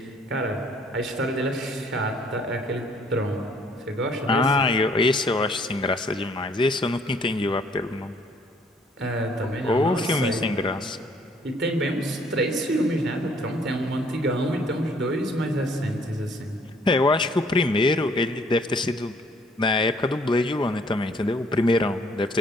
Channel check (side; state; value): both; normal; correlation 0.62